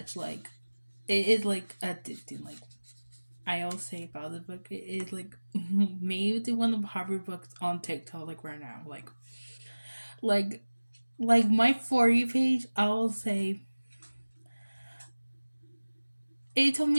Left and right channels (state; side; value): inverted; both; correlation -1.00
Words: Like, it is like addicting. Like, I always say about this book, it is like maybe one of the popular books on TikTok, like right now. Like, like my For You page, I will say it took